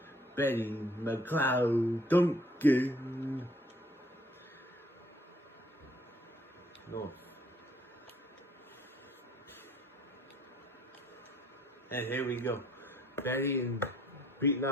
Betty McLeod Duncan. No. And here we go. Betty and beating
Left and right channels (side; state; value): both; normal; correlation 0.62